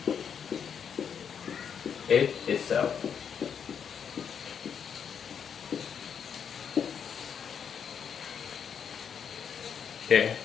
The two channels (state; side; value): quieter; right; 7.4 dB